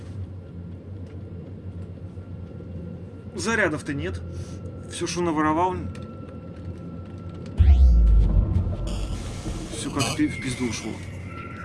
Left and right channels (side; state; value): both; identical; correlation 1.00